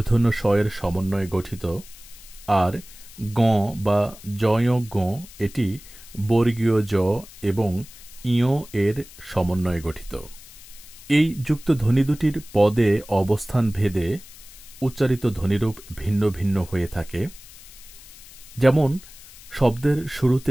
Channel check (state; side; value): noise; left; hiss, 19 dB below the sound